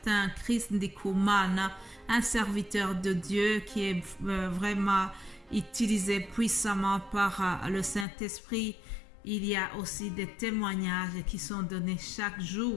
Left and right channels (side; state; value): right; drops out; at 8.1 s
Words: Chris Ndikumana, un serviteur de Dieu qui est vraiment utilisé puissamment par le Saint-Esprit, il y a aussi des témoignages qui sont donnés chaque